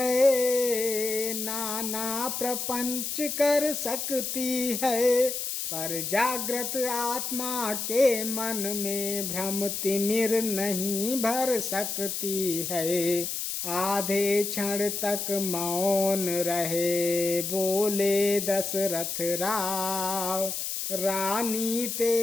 नाना प्रपंच कर सकती है। पर जागृत आत्मा के मन में भ्रम तिमिर नहीं भर सकती है। आधे क्षण तक मौन रहे, बोले दशरथ राव। रानी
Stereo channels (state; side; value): noise; left; hiss, 3 dB below the sound